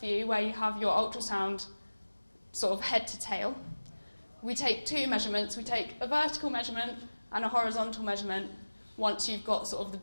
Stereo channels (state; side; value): inverted; both; correlation -1.00